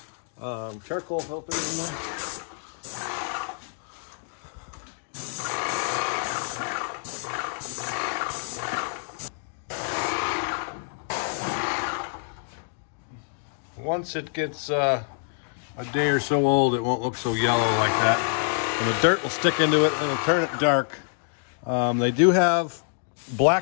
charcoal filter, you know. once it gets a day or so old, it won't look so yellow like that. And the dirt will stick into it and it'll turn it dark. They do have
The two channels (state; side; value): silent; right; digital silence